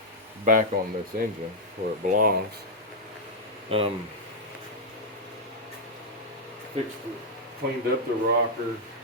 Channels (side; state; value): both; normal; correlation -0.04